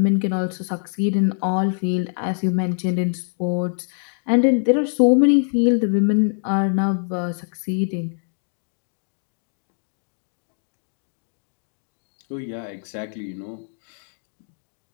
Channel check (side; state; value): right; silent; digital silence